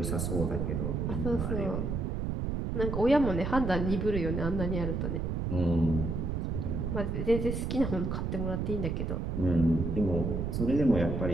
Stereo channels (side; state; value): right; noise; rumble, 1 dB below the sound